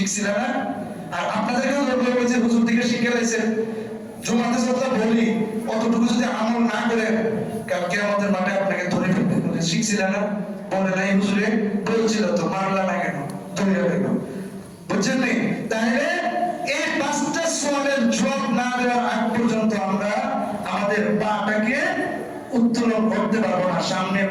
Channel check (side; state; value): both; identical; correlation 1.00